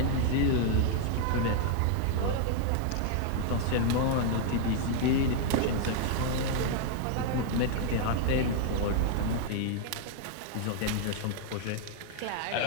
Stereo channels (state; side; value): different; both; correlation 0.00